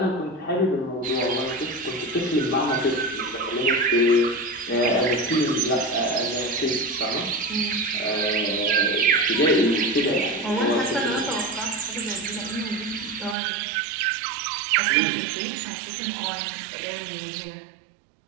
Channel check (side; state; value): left; drops out; at 13.4 s